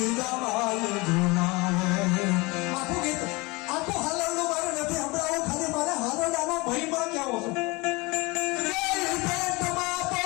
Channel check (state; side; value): quieter; right; 24.9 dB